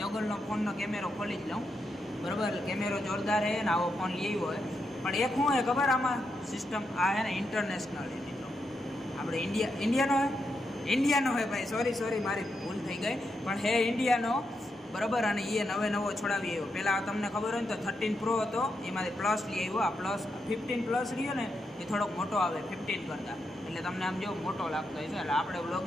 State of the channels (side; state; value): both; normal; correlation 0.83